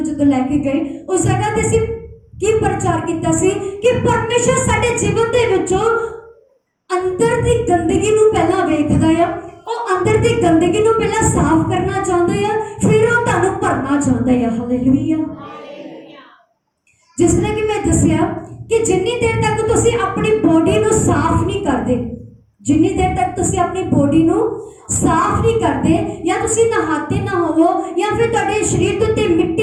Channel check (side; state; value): both; identical; correlation 1.00